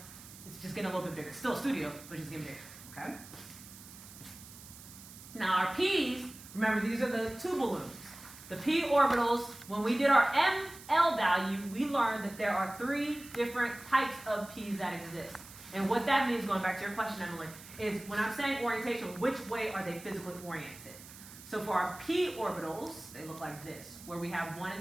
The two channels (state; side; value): noise; right; hiss, 17 dB below the sound